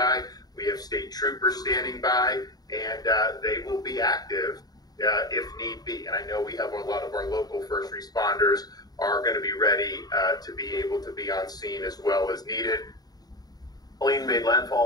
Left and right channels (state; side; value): late; right; 0.19 ms